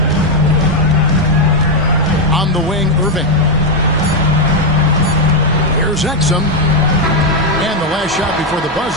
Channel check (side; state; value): both; normal; correlation 0.03